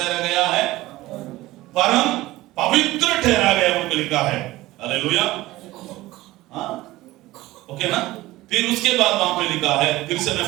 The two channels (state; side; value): quieter; left; 17.8 dB